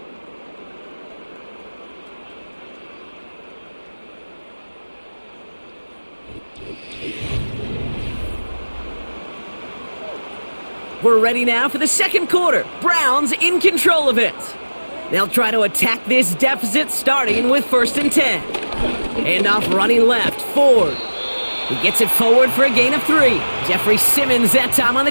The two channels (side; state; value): both; inverted; correlation -1.00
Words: We're ready now for the second quarter. Browns in control of it. They'll try to attack this deficit starting with 1st and 10. And off running left, Ford. He gets it forward for a gain of 3. Jeffrey Simmons that time on the